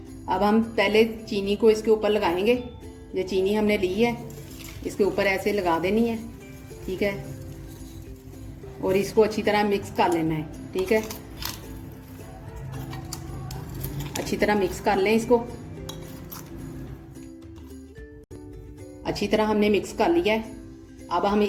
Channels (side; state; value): both; identical; correlation 1.00